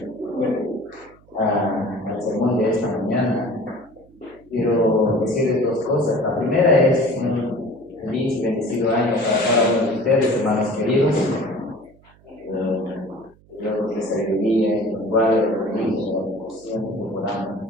sermón de esta mañana, quiero decirles dos cosas. La primera es un feliz y bendecido año para cada uno de ustedes, hermanos queridos. Dios les sabiduría y los guarde de la siempre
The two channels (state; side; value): noise; right; hum, 29 dB below the sound